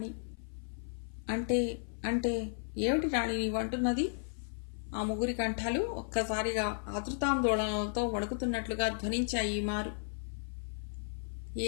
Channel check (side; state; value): right; silent; 55 dB below the other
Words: అంటే అంటే ఏమిటి రాణి నీవంటున్నది? ఆ ముగ్గురి కంఠాలు ఒక్కసారిగా ఆతృతాందోళనలతో వణుకుతున్నట్లుగా ధ్వనించాయి. మారు